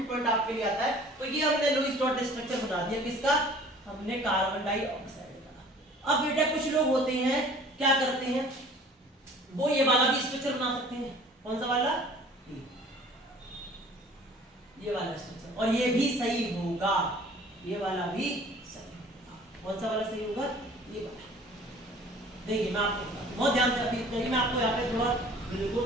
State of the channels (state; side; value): normal; both; correlation 0.49